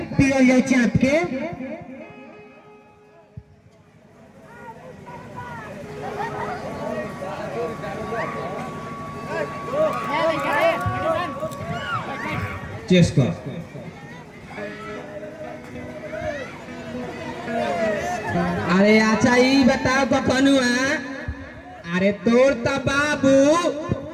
पियो जाए चाप के। चेस कर अरे अच्छा ये बताओ कखनुआ अरे तोर तो बाबू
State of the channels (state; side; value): identical; both; correlation 1.00